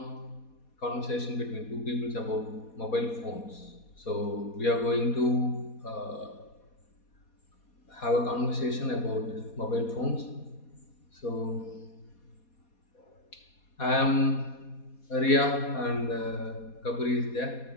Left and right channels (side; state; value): right; late; 4.2 ms